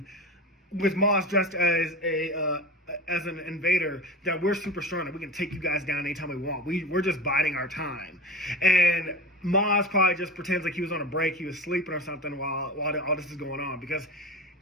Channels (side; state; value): both; normal; correlation 0.29